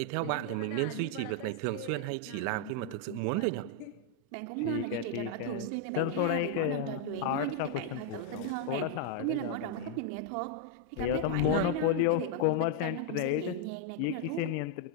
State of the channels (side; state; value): both; different; correlation 0.00